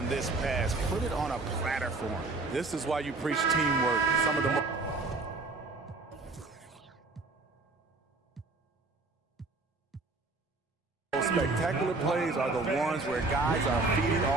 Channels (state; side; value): quieter; left; 3.4 dB